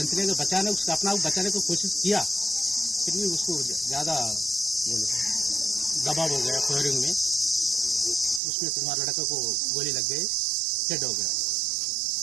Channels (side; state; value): left; drops out; at 8.4 s